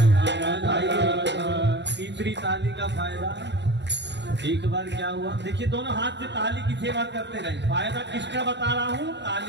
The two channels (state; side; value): late; left; 0.51 ms